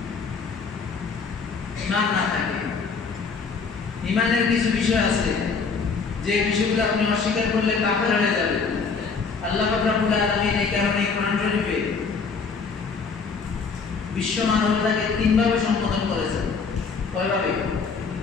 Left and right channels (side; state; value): right; quieter; 5.1 dB